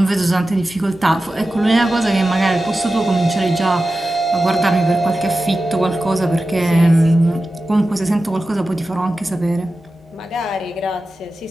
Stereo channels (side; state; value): both; normal; correlation 0.94